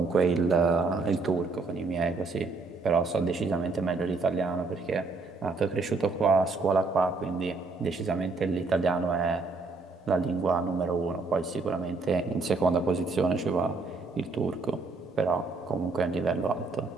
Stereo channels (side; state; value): left; quieter; 3.9 dB